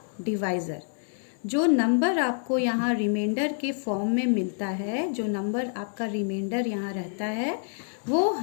divisor. जो number आपको यहाँ reminder के form में मिलता है, जो number आपका reminder यहाँ रहता है, वो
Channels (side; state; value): right; silent; 60 dB below the other